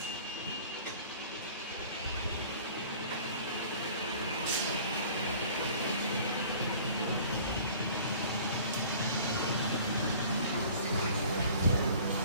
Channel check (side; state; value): both; inverted; correlation -0.48